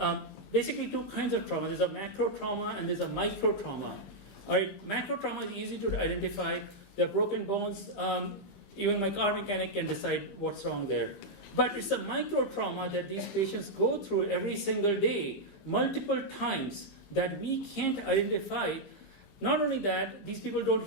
basically two kinds of trauma. There's a macro trauma and there's a micro trauma. All right, macro trauma is easy to identify. They're broken bones. Even my car mechanic can decide what's wrong there. But it's a micro trauma that these patients go through every single day, multiple times, that we can't identify. Not only that, these people don't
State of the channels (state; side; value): late; right; 15 ms